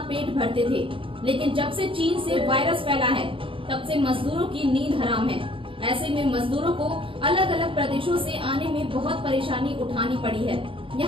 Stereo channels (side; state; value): left; late; 0.25 ms